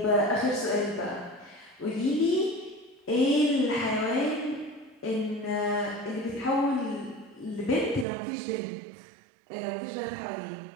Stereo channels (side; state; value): left; drops out; at 8.1 s